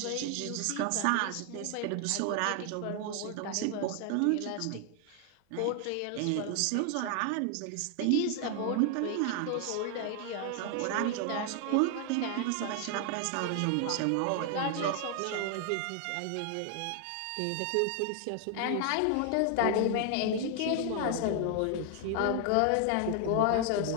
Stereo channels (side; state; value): both; different; correlation 0.00